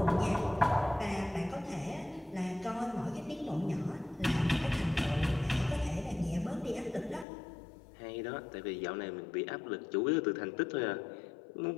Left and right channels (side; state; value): right; drops out; at 7.2 s